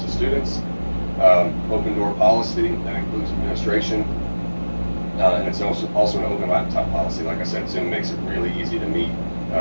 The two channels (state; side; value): inverted; both; correlation -1.00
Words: students. Open door policy, that includes administration, and it's also an open laptop policy. Like I said, Zoom makes it really easy to meet,